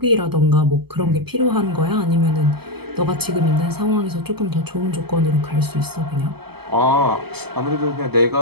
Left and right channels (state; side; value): late; left; 0.96 ms